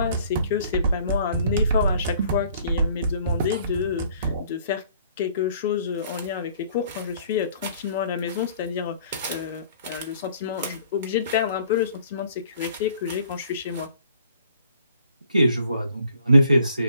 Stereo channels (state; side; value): inverted; both; correlation -0.57